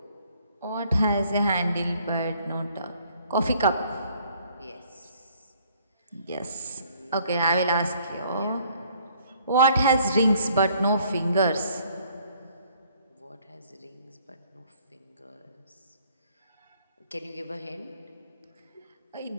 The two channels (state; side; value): inverted; both; correlation -0.62